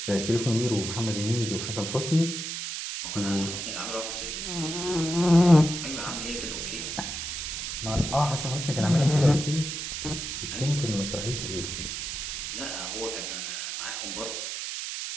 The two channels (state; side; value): noise; right; hiss, 5 dB below the sound